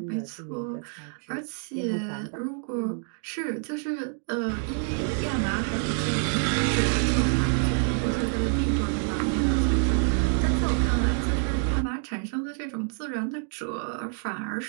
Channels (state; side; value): silent; left; 60 dB below the other